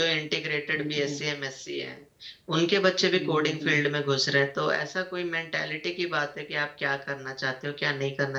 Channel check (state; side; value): identical; both; correlation 1.00